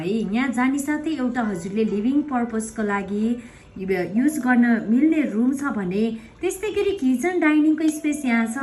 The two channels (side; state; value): both; identical; correlation 1.00